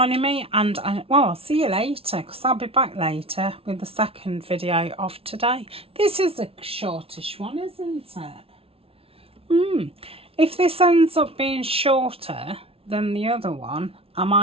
me, and I'll see you later, because I'll be back later with the second video of today. This is a shortish one, isn't it? If this ends up being shorter than the other one, I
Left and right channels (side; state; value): left; late; 0.27 ms